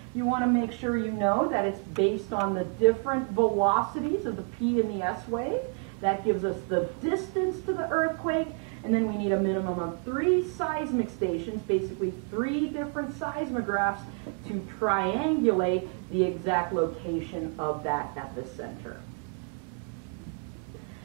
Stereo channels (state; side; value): quieter; left; 38.2 dB